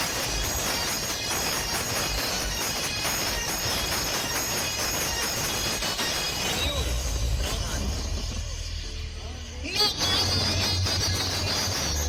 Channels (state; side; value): identical; both; correlation 1.00